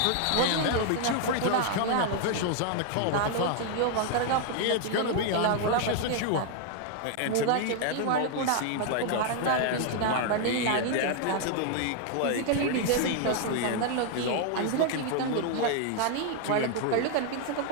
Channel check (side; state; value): both; different; correlation 0.00